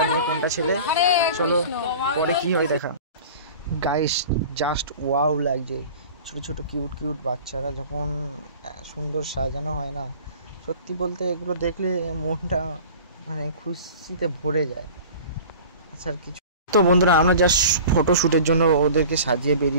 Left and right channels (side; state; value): both; inverted; correlation -0.41